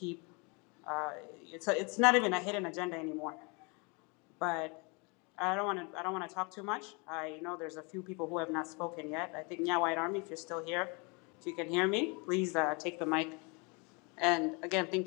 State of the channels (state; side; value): quieter; right; 31.0 dB